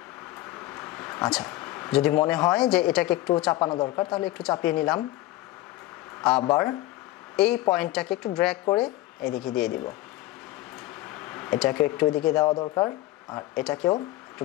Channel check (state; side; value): quieter; right; 16.8 dB